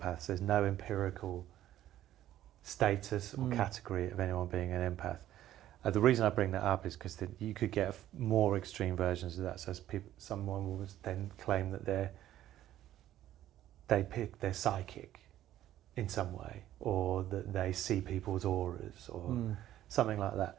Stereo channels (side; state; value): left; quieter; 13.0 dB